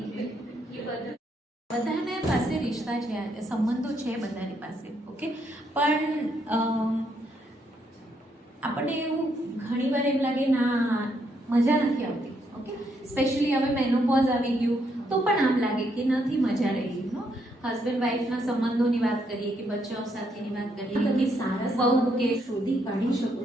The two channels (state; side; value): normal; both; correlation 0.75